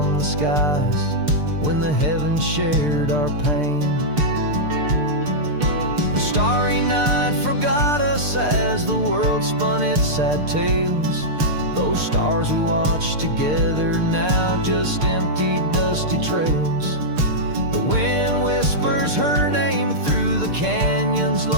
the skies when the heavens shared our pain. The starry night forgot us as the world spun its sad tales. Those stars we watched together now just empty, dusty trails. The wind whispers her name through the canyon's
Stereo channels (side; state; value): left; late; 6.7 ms